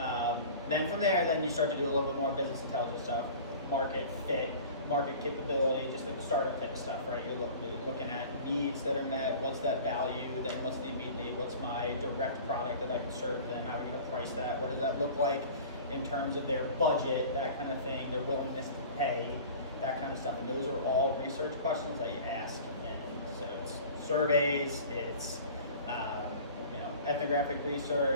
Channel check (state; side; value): inverted; both; correlation -0.42